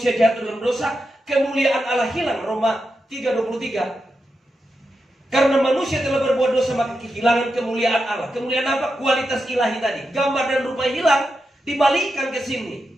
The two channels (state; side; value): normal; both; correlation 0.88